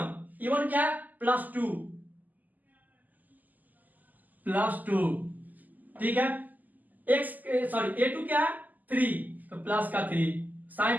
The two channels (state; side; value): late; left; 0.082 ms